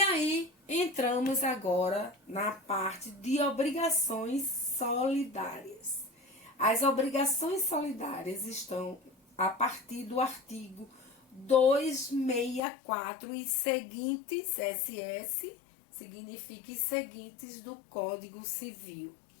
entramos agora na parte de obrigações solidárias. As obrigações solidárias estão a partir do artigo 264 e seguintes, SS significa e seguintes do Código Civil,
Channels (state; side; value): drops out; right; at 12.6 s